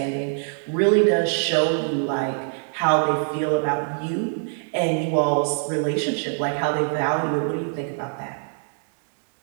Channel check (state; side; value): silent; left; digital silence